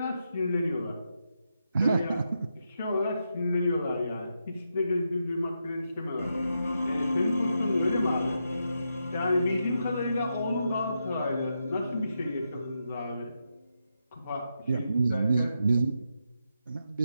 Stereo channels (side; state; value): both; inverted; correlation -0.84